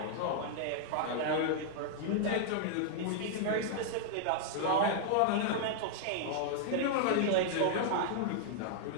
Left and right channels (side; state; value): both; different; correlation -0.01